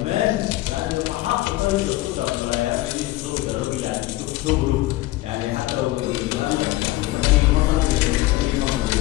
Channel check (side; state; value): right; quieter; 17.7 dB